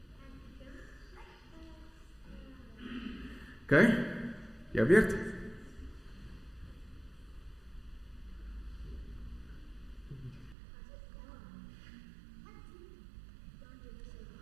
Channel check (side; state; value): left; drops out; at 10.6 s